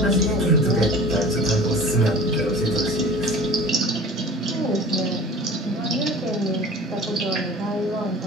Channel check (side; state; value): both; normal; correlation 0.41